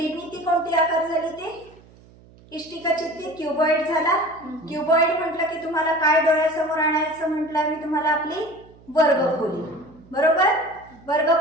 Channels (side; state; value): right; noise; hum, 25 dB below the sound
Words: कोणती आकार झाली ते, इष्टिका चित्ती, क्युबॉइड झाला. क्युबॉइड म्हटलं की तुम्हाला काय डोळ्यासमोर आणायचं म्हटलं मी तुम्हाला, आपली वर्गखोली, बरोबर.